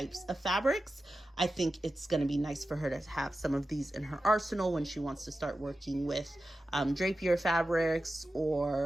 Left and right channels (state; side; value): normal; both; correlation 0.93